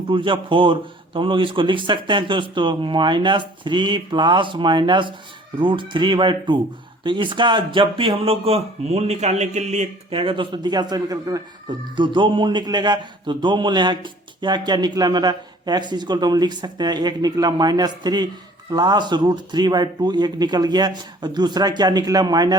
2 जा 4, तो हम लोग इसको लिख सकते हैं दोस्तों -3 प्लस माइनस √3 बाई 2। तो इसका जब भी हम लोग मूल निकालने के लिए कहेगा दोस्तों द्विघात समीकरण, तो दो मूल निकलेगा। तो 2 मूल यहाँ क्या क्या निकला मेरा, x इक्वल तो हम लिख सकते हैं, एक निकला -3 प्लस √3 बाई 2 एक निकल गया, और दूसरा क्या निकला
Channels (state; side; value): normal; both; correlation 0.52